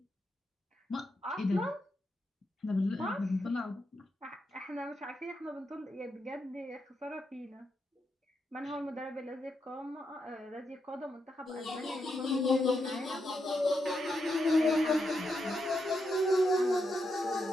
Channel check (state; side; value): normal; both; correlation 0.83